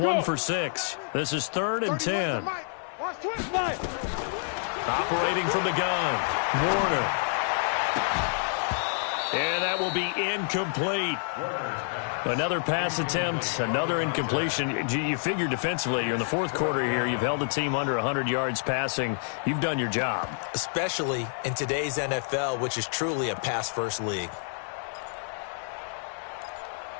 for 6. This is 3rd and 10. Operating from the gun, Warner. And that will be incomplete. Another pass attempt, another incompletion. You figure defensively, you're in the 4th quarter here. You've held the team under 100 yards passing. You've done your job. Especially in today's NFL, which is truly a pass-first league.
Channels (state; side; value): silent; right; 59 dB below the other